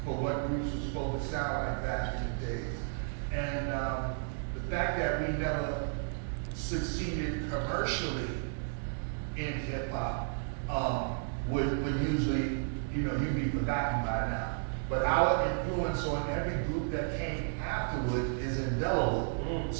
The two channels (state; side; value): silent; left; digital silence